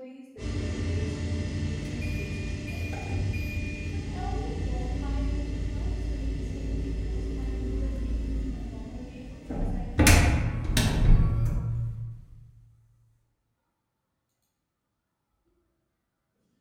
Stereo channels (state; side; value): identical; both; correlation 1.00